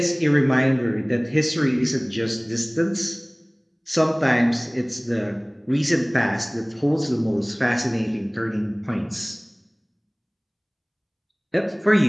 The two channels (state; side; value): identical; both; correlation 1.00